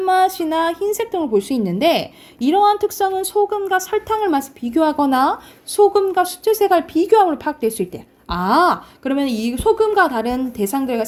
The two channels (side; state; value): both; identical; correlation 1.00